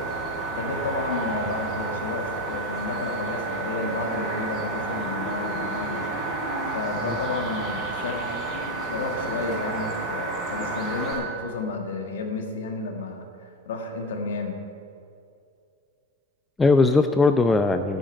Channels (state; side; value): normal; both; correlation 0.32